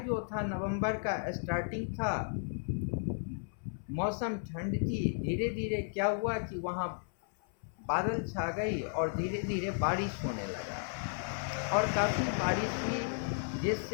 जो था नवंबर का स्टार्टिंग था, मौसम ठंड थी। धीरे धीरे क्या हुआ कि वहाँ बादल छा गई और धीरे धीरे बारिश होने लगा, और काफ़ी बारिश हुई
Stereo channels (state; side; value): silent; right; 55 dB below the other